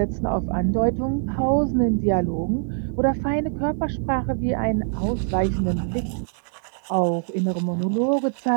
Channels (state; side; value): silent; left; 63 dB below the other